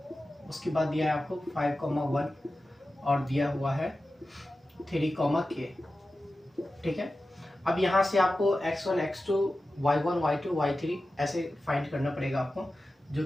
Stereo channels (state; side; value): normal; both; correlation 0.94